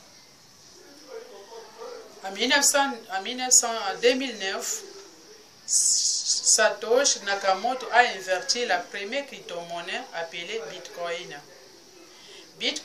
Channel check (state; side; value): identical; both; correlation 1.00